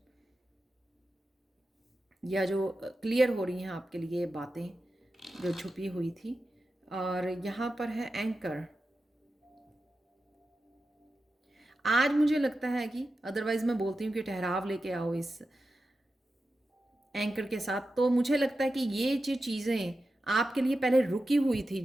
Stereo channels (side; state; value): both; normal; correlation 0.91